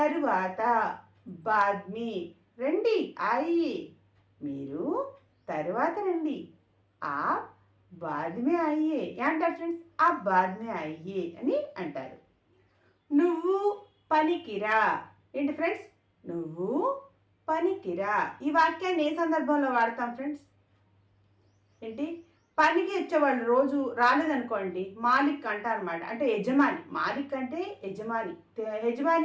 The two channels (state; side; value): identical; both; correlation 1.00